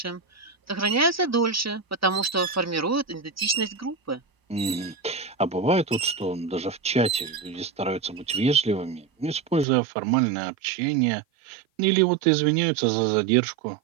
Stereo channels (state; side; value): drops out; left; at 9.7 s